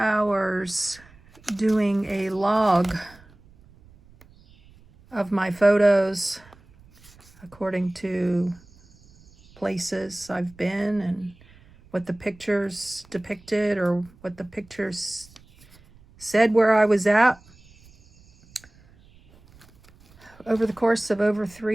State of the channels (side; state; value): right; noise; rumble, 26 dB below the sound